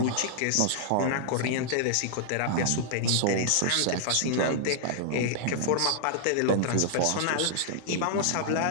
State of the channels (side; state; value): both; different; correlation -0.01